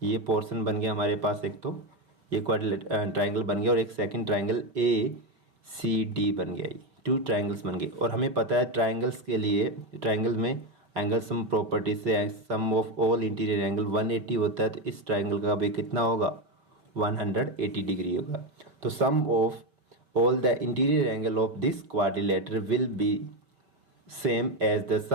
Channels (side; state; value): left; late; 5.6 ms